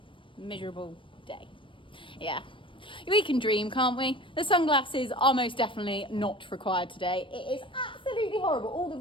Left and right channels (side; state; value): right; late; 0.25 ms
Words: miserable day. Yeah. We can dream, can't we? The sunglasses are most definitely not required today. It is absolutely horrible. All the